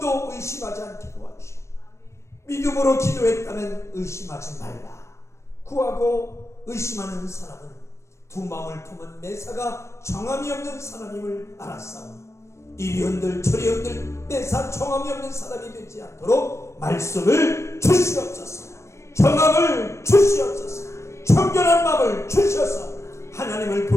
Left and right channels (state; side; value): late; right; 0.14 ms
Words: 의심하지 않게 도와주시고, 믿음으로 기도했다면 의심하지 말라. 구하고 의심하는 사람은 두 마음을 품은 매사가 정함이 없는 사람임을 알았사오니 이리 흔들 저리 흔들 매사 정함이 없는 사람이 되지 않도록 말씀을 주시옵소서. 정함을 주시옵소서. 청결한 마음을 주셔서 하나님을